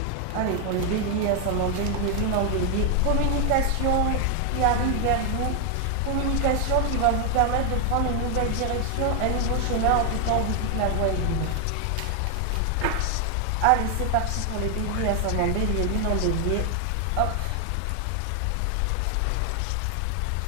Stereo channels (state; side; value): different; both; correlation 0.00